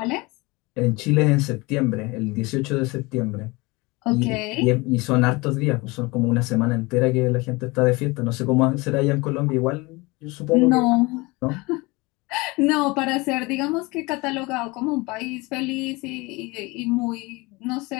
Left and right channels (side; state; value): right; quieter; 24.4 dB